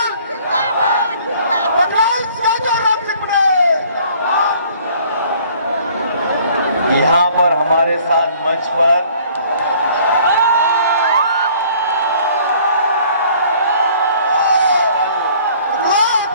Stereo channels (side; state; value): both; inverted; correlation -0.56